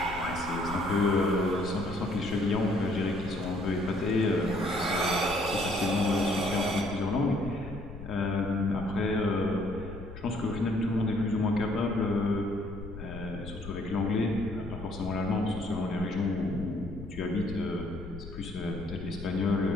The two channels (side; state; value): left; noise; rumble, 12 dB below the sound